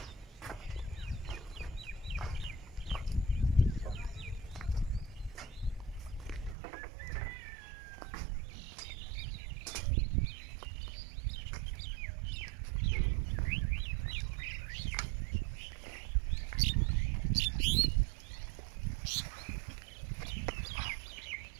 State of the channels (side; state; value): left; drops out; at 6.6 s